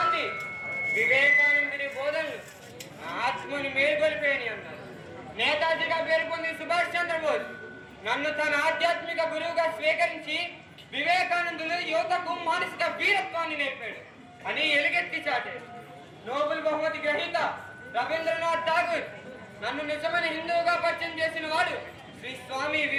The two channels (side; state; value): both; identical; correlation 1.00